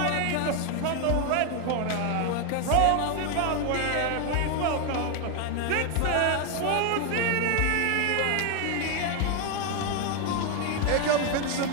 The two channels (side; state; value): both; different; correlation 0.01